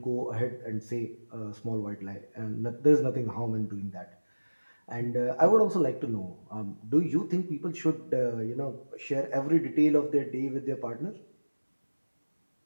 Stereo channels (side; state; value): both; inverted; correlation -1.00